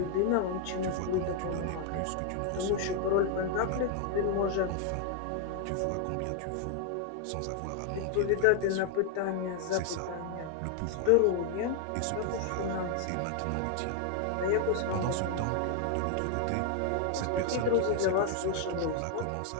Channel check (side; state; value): both; different; correlation 0.00